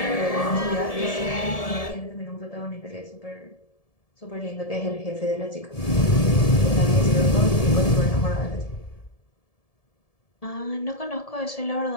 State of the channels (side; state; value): right; late; 1.7 ms